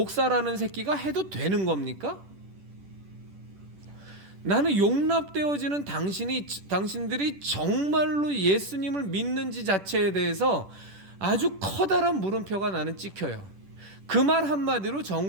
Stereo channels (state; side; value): late; left; 10 ms